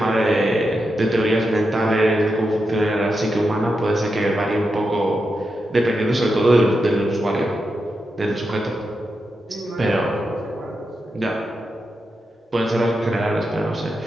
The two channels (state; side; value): normal; both; correlation 0.87